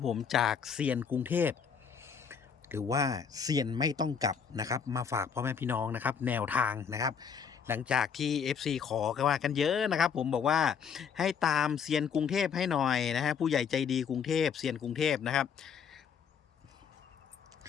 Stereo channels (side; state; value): right; quieter; 6.8 dB